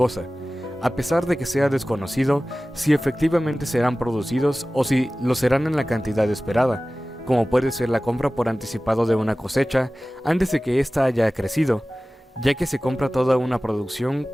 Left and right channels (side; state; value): both; normal; correlation 0.97